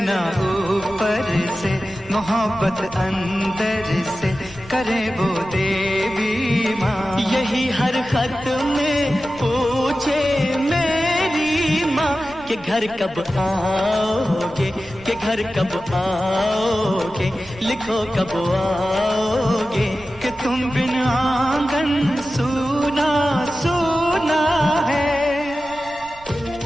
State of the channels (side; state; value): right; noise; rumble, 21 dB below the sound